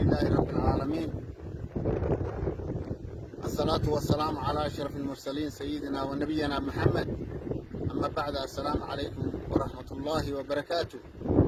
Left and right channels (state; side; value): identical; both; correlation 1.00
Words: رب العالمين، الصلاة والسلام على أشرف المرسلين سيدنا ونبينا محمد. أما بعد، السلام عليكم ورحمة الله وبركاته.